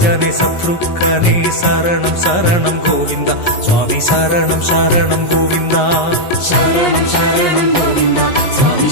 ശത്രുഘ്നെ ശരണം ശരണം ഗോവിന്ദ സ്വാമി ശരണം ശരണം ഗോവിന്ദ ശരണം ശരണം ഗോവിന്ദ സ്വാമി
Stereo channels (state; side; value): late; right; 11 ms